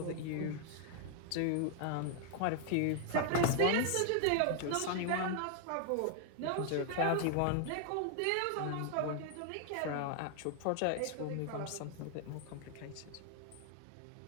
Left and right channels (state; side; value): different; both; correlation 0.00